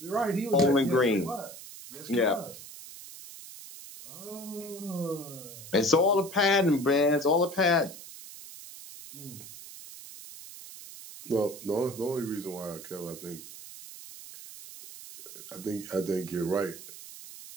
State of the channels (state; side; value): noise; right; hiss, 14 dB below the sound